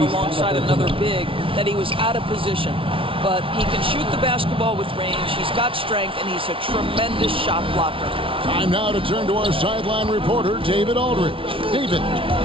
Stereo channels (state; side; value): late; left; 0.25 ms